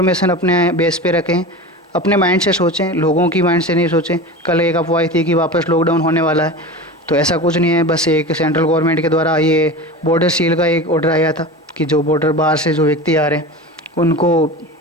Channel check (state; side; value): normal; both; correlation 0.30